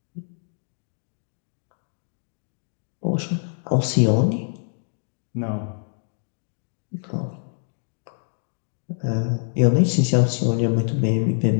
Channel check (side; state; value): right; silent; digital silence